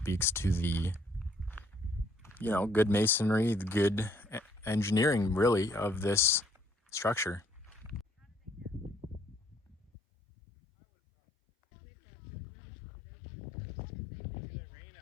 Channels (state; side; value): drops out; right; at 9.9 s